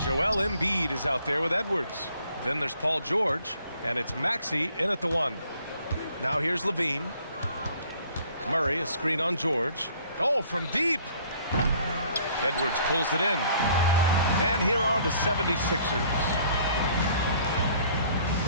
Joel Embiid is out there with Edwards. Then there's Paul George. And it's Maxey in at the 1. Now here's LaVine. Murray, a screen on George. Oh, from deep. Edwards pulls it in. And here are the 76ers.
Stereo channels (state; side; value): inverted; both; correlation -0.58